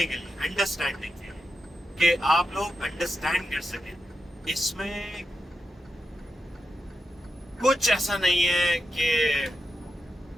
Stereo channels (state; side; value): normal; both; correlation 0.87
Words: کے لیے، انڈرسٹینڈنگ کے لیے، کہ آپ لوگ انڈرسٹینڈ کر سکیں۔ اس میں کچھ ایسا نہیں ہے کہ